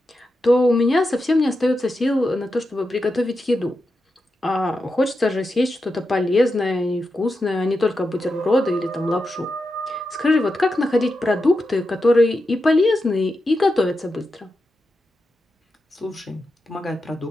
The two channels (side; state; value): both; normal; correlation 0.88